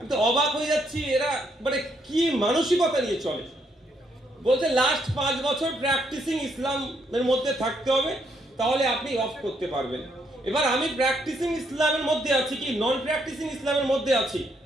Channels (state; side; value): normal; both; correlation 0.74